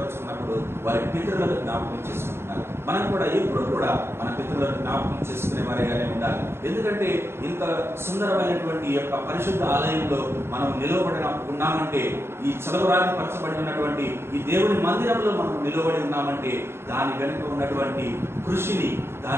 వారి పితరులను జ్ఞాపకం చేసుకుంటున్నారు. మనం కూడా ఎప్పుడు కూడా మన పితరులను జ్ఞాపకం చేసుకునే వారిగానే ఉండాలి. ఎందుకంటే ఇంత సుందరమైనటువంటి యొక్క పరిశుద్ధ ఆలయంలో మనం నిలవబడిన ఉన్నామంటే, ఈ చలవరాగి పరచబడి ఉన్నటువంటి ఈ దేవుని మందిరంలో మనం నిలబడి ఉన్నామంటే దాని వెనుక ఉన్నటువంటి కృషిని,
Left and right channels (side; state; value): left; late; 0.12 ms